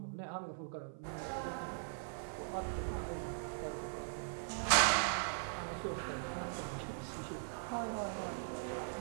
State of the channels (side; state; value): left; silent; 51 dB below the other